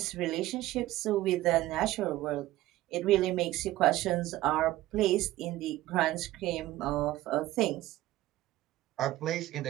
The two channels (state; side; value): quieter; left; 16.1 dB